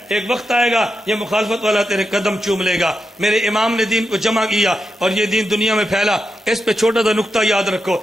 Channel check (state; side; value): normal; both; correlation 0.87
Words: ایک وقت آئے گا یہ مخالفت والا تیرے قدم چوم لے گا۔ میرے امام نے دین کو جمع کیا اور یہ دین دنیا میں پھیلا۔ اس پہ چھوٹا سا نقطہ یاد رکھو،